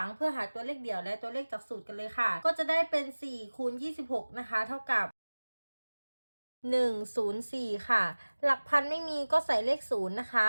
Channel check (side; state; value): both; inverted; correlation -1.00